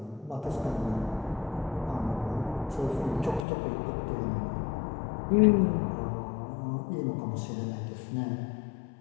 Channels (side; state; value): right; drops out; at 3.5 s